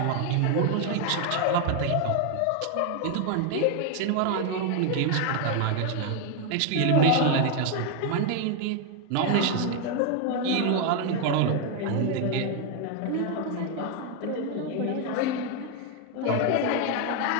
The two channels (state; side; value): different; both; correlation 0.01